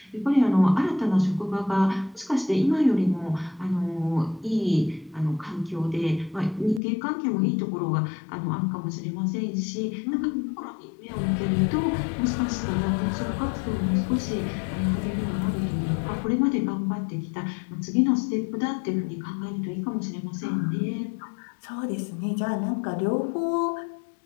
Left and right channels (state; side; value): drops out; right; at 6.8 s